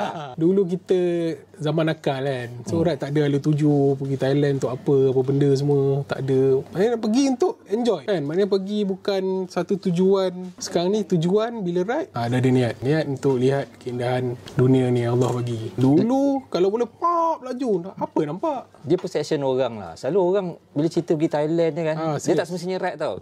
Dulu kita zaman nakal kan. So tak ada ala tuju pergi Thailand untuk apa benda semua. Tak ada. Maknanya pergi untuk enjoy kan. Maknanya pergi bukan satu tujuan. Sekarang ni tujuan bila ride dah ada niat untuk lihat keindahan dunia ni Allah bagi. Dulu kalau boleh pop laju, apa nampak? Dia perception orang lah. Selalu orang bila cerita pergi Thailand ni kan, dia tak semestinya ride tau.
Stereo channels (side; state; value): both; identical; correlation 1.00